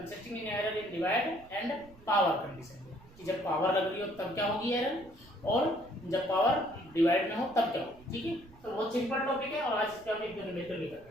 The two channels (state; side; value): noise; right; rumble, 23 dB below the sound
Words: in error in divide and power condition, कि जब पावर लग रही हो तब क्या होगी एरर, और जब पावर डिवाइड में हो तब क्या होगी। ठीक है, तो बहुत सिंपल टॉपिक है और आज इसका हम एक दो नंबर भी कर